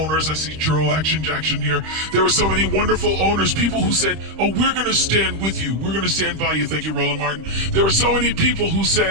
I see Churl Action Jackson here. There were so many wonderful owners, people who said, oh, we're going to stand with you. We're going to stand by you. Thank you, Roland Martin. There were so many people who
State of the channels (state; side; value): late; left; 26 ms